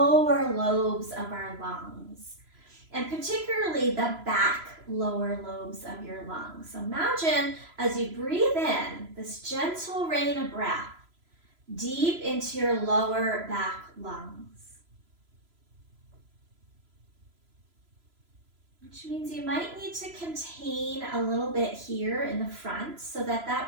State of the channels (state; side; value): late; left; 3.0 ms